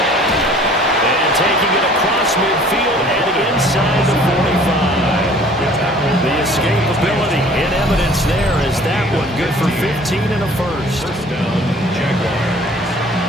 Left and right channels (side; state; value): both; normal; correlation 0.51